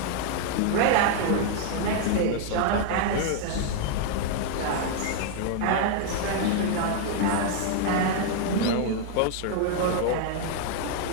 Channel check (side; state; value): both; different; correlation 0.00